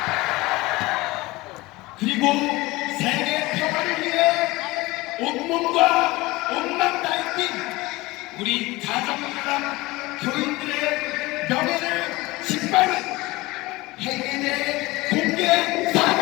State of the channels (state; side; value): quieter; right; 21.0 dB